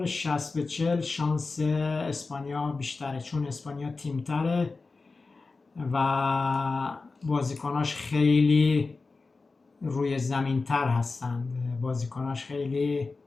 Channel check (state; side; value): quieter; right; 3.9 dB